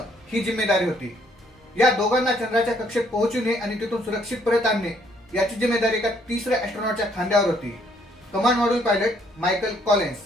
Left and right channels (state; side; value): normal; both; correlation 0.67